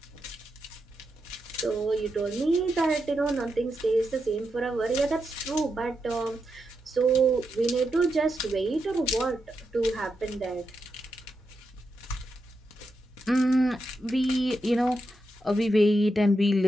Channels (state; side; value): normal; both; correlation 0.85